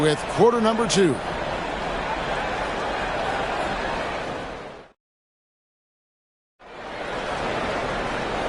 quarter number 2.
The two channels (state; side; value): identical; both; correlation 1.00